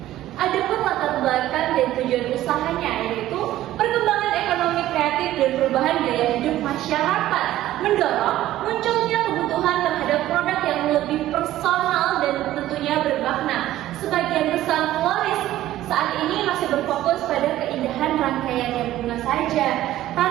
Adapun latar belakang dan tujuan usahanya yaitu perkembangan ekonomi kreatif dan perubahan gaya hidup masyarakat, mendorong munculnya kebutuhan terhadap produk yang lebih personal dan tentunya bermakna. Sebagian besar floris saat ini masih berfokus pada keindahan rangkaian yang bunga saja,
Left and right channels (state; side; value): quieter; left; 14.2 dB